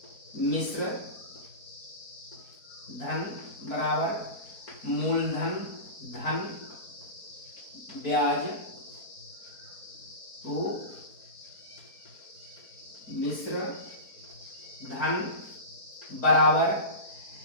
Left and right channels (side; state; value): right; late; 4.4 ms